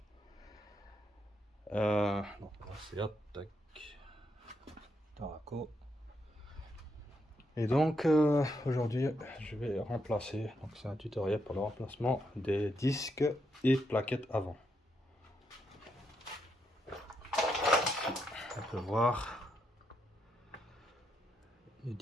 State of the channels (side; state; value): both; normal; correlation 0.80